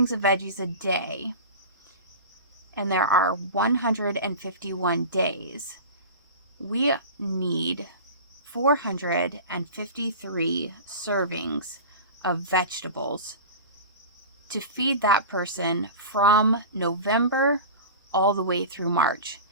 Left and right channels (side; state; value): both; inverted; correlation -0.32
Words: of veggies a day, and there are 151 days, we need 453 servings of vegetables to feed that person from November all the way through March.